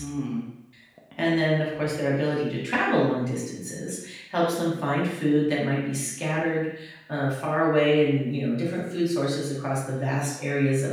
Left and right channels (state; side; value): identical; both; correlation 1.00